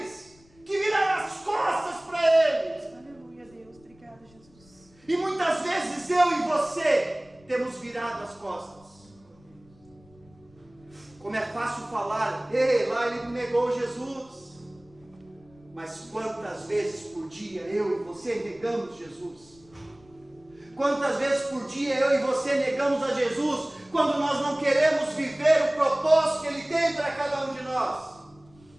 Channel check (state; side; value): noise; left; rumble, 28 dB below the sound